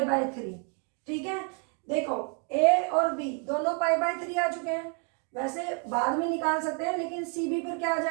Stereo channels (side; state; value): left; quieter; 37.3 dB